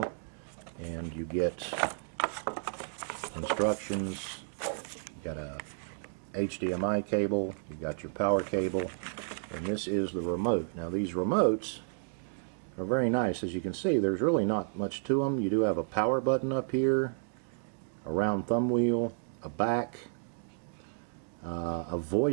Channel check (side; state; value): left; silent; digital silence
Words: And you get instructions. You've got a HDMI cable. You've got your power cable. And this is the remote. Now these remotes are very nice. As you can see, there's really not much to them. You do have a power button up here, a round thumb wheel, a back, a